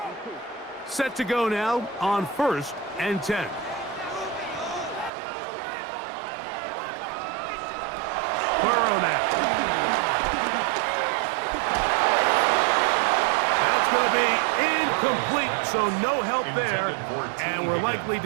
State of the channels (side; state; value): left; drops out; at 5.1 s